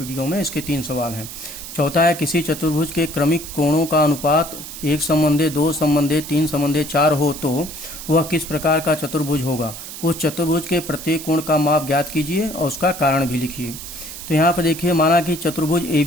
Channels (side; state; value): right; noise; hiss, 11 dB below the sound